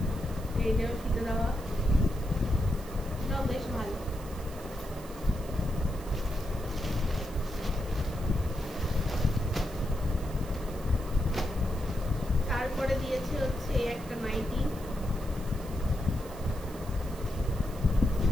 এই যে ফিতে দেওয়া, এটাও বেশ ভালো। তারপরে দিয়েছে হচ্ছে এই একটা নাইটি,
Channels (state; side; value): noise; right; hiss, 19 dB below the sound